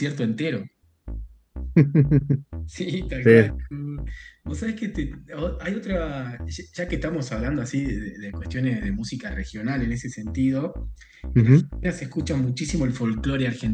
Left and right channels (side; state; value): both; identical; correlation 1.00